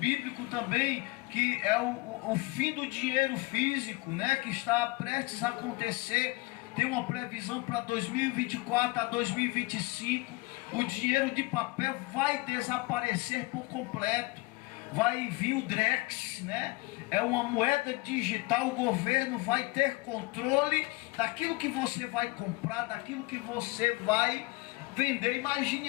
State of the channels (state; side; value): quieter; right; 23.8 dB